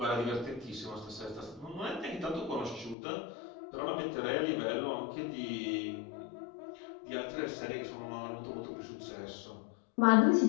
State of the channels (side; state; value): right; drops out; at 3.0 s